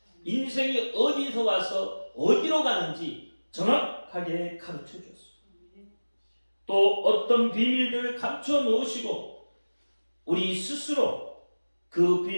인생이 어디서 와서 어디로 가는지 정확하게 가르쳐 줬습니다. 또 어떤 비밀들을 감춰 놓으시고 우리 스스로 그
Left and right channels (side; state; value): both; inverted; correlation -1.00